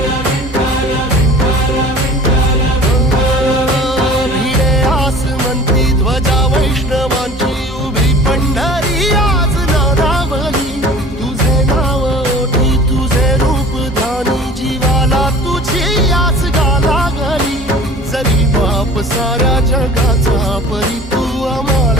भिडे आसमंती ध्वजा वैष्णवांची उभी पंढरी आज नानावली तुझे नाव ओठी तुझे रूप ध्यानी जीवाला तुझी आस गाला गली जरी बाप साऱ्या जगाचा परी तू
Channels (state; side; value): normal; both; correlation 0.44